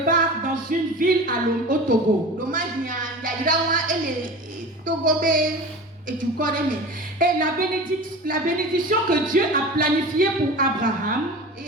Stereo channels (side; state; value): both; normal; correlation 0.34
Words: part dans une ville au Togo. Et la bénédiction que Dieu a planifiée pour Abraham,